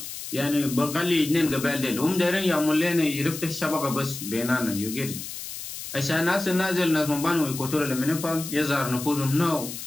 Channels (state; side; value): noise; left; hiss, 9 dB below the sound